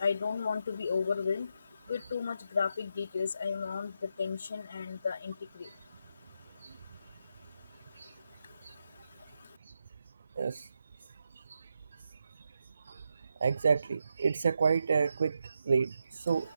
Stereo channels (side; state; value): both; inverted; correlation -0.84